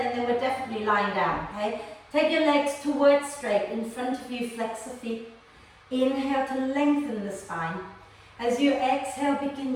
and then we're definitely lying down. Okay? Take your legs towards straight. In front of you, flex the feet. Inhale to lengthen the spine. As you exhale,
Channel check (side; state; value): both; identical; correlation 1.00